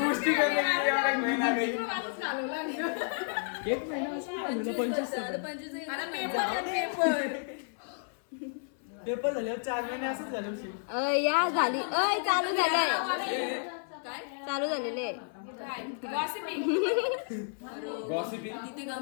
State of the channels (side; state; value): right; silent; 55 dB below the other